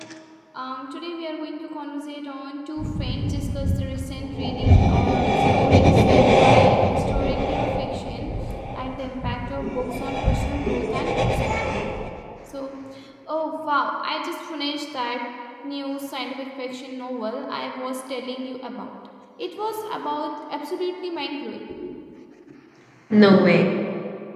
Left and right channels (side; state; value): both; identical; correlation 1.00